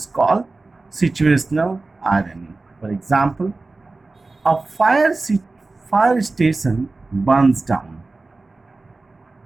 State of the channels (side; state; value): left; quieter; 3.4 dB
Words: called situational irony. For example, a fire station burns down.